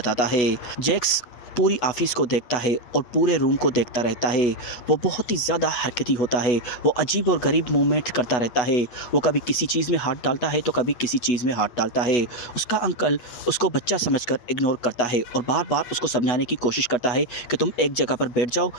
है। जैक्स पूरी ऑफिस को देखता है और पूरे रूम को देखता रहता है। वो बहुत ही ज़्यादा हरकती होता है। वो अजीब और गरीब मूवमेंट करता रहता है। वो कभी किसी चीज़ में हाथ डालता है तो कभी किसी चीज़ में हाथ डालता है। उसका अंकल उसको बच्चा समझकर इग्नोर करता है और बार बार उसको समझाने की कोशिश करता है कि तुम एक जगह पर बैठ जाओ,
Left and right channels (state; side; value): late; right; 8.2 ms